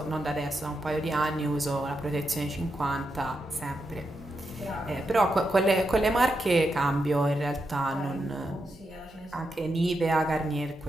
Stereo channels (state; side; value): normal; both; correlation 0.85